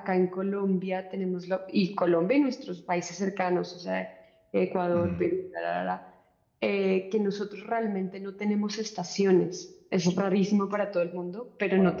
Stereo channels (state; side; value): identical; both; correlation 1.00